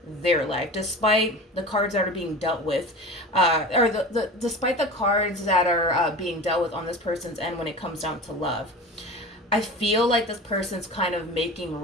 their life, despite the cards that are being dealt with, despite the cards that are being dealt with on this person's end when it comes down to love. I feel like this person's kind of making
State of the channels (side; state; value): both; normal; correlation 0.33